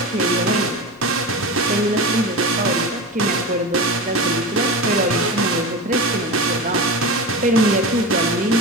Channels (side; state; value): both; normal; correlation 0.26